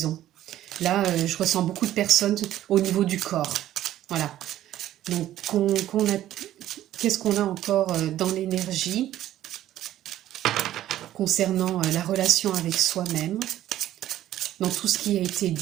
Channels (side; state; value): left; quieter; 13.1 dB